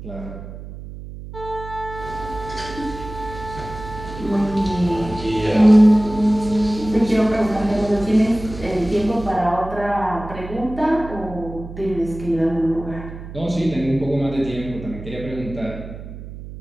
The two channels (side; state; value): right; noise; hum, 12 dB below the sound